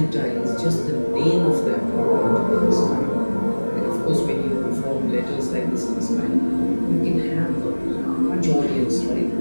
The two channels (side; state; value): both; inverted; correlation -1.00